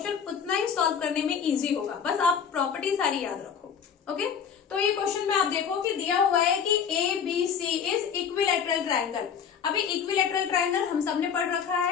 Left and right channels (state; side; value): quieter; right; 7.3 dB